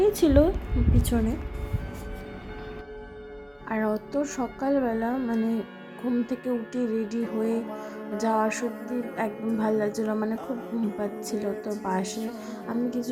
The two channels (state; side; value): identical; both; correlation 1.00